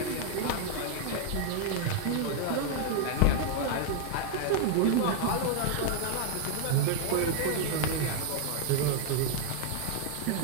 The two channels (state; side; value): different; both; correlation 0.00